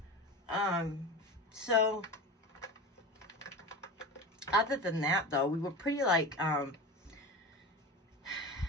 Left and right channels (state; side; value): normal; both; correlation 0.29